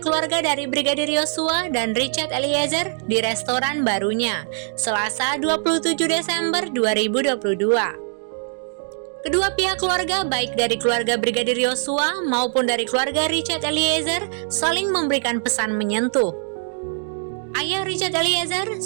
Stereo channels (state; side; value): silent; left; 63 dB below the other